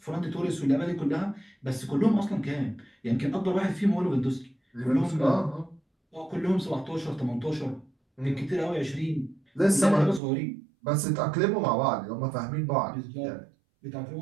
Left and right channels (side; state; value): left; drops out; at 10.2 s